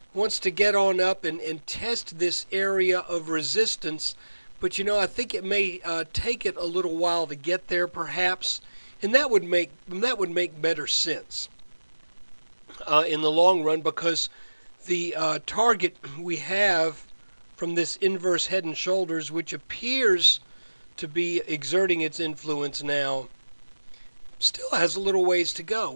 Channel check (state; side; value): inverted; both; correlation -1.00